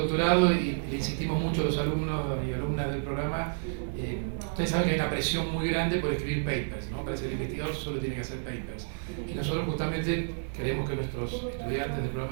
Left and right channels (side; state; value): left; silent; digital silence